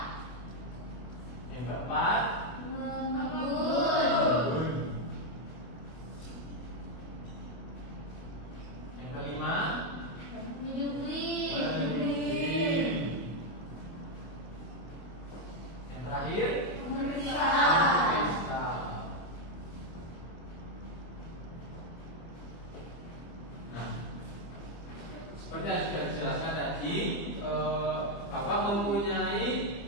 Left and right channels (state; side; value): late; right; 24 ms